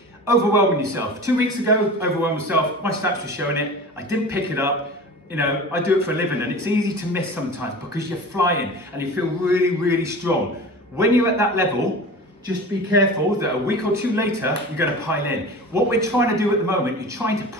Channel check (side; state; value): both; normal; correlation 0.35